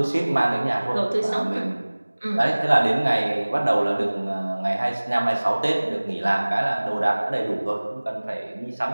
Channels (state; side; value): inverted; both; correlation -1.00